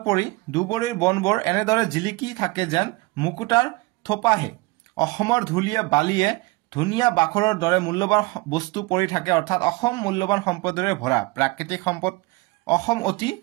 পৰি দুবৰীৰ বনবোৰ এনেদৰে জিলিকি থাকে যেন মুকুটাৰ থোপাহে অসমৰ ধুলিয়ে বালিয়ে ধুনীয়া বাখৰৰ দৰে মূল্যৱান বস্তু পৰি থাকে অৰ্থাৎ অসম মূল্যৱান সম্পদৰে ভৰা প্ৰাকৃতিক সম্পদ অসম অতি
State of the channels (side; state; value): left; quieter; 23.2 dB